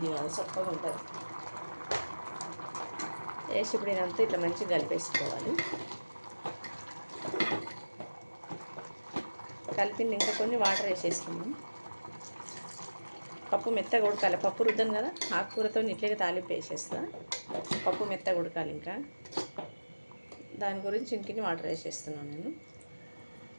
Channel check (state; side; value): inverted; both; correlation -1.00